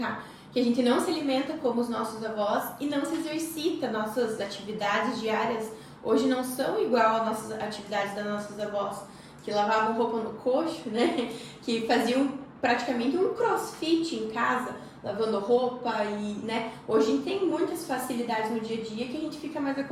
que a gente não se alimenta como os nossos avós e não se exercita. Nossas atividades diárias hoje não são igual às nossas atividades das nossas avós, que lavavam roupa no coxo, né? Que faziam praticamente um crossfit em casa, lavando roupa e, né? Hoje a gente tem muitas facilidades no dia a dia que a gente fica mais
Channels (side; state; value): both; identical; correlation 1.00